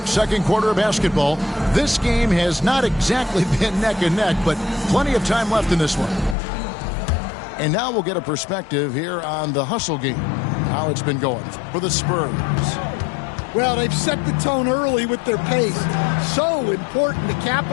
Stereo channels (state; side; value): drops out; right; at 6.4 s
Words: Second quarter of basketball. This game has not exactly been neck and neck, but plenty of time left in this one. And now we'll get a perspective here on the hustle game, how it's been going for the Spurs. Well, they've set the tone early with their pace. So important to